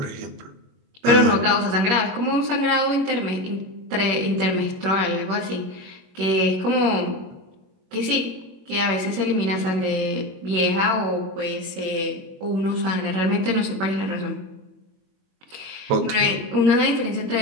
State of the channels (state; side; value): late; left; 21 ms